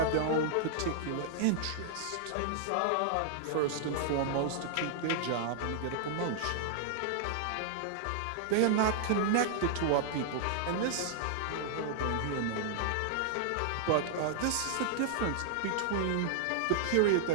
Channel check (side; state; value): both; different; correlation -0.01